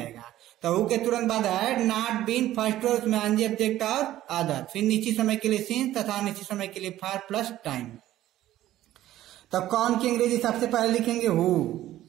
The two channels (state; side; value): quieter; left; 13.9 dB